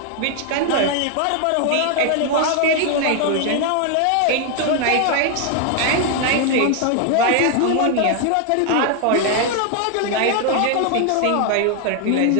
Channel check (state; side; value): different; both; correlation 0.00